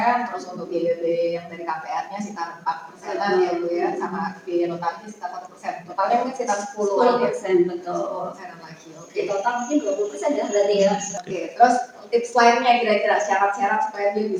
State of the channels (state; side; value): identical; both; correlation 1.00